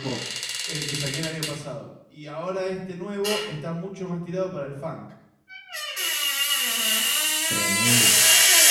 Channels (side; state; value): both; identical; correlation 1.00